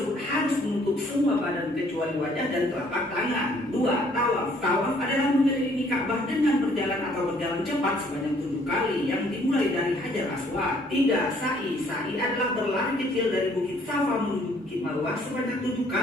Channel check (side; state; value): both; normal; correlation 0.62